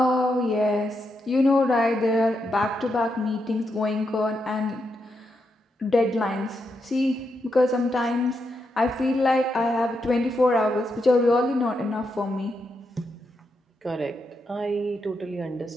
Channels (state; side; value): normal; both; correlation 0.83